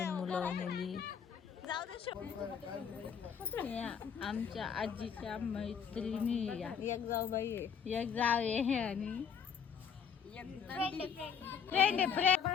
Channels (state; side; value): quieter; right; 7.1 dB